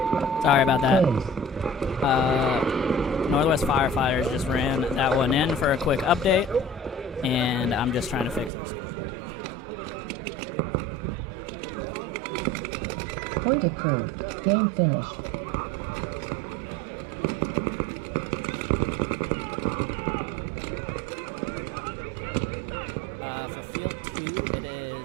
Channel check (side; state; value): left; drops out; at 8.5 s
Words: Sorry about that. Northwest Firefighters just ran that one in for a quick update, and I'm just trying to fix our scoreboard real quick. Point approved. Game finished. For Field 2, it